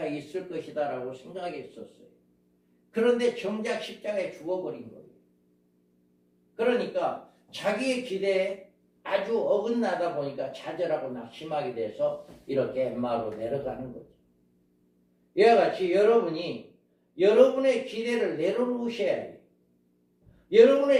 있을 것이다 라고 생각했었어요. 그런데 정작 십자가에 죽어버린 거예요. 그러니까 자기의 기대에 아주 어긋나다 보니까 좌절하고 낙심하게 돼서 이렇게 엠마로 내려가는 거죠. 이와 같이 여러분이 여러분의 기대를 내려놓으셔야 해요.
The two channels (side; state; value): both; identical; correlation 1.00